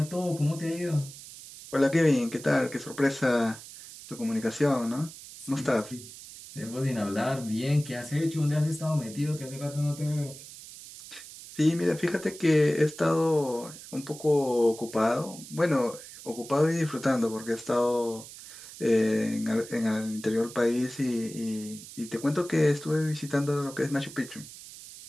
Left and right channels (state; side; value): noise; right; hiss, 15 dB below the sound